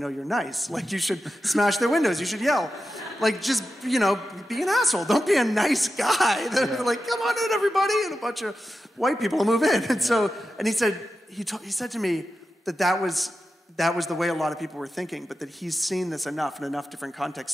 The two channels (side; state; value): both; normal; correlation 0.91